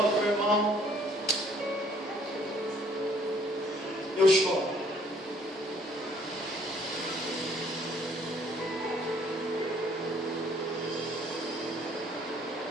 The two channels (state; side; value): normal; both; correlation 0.61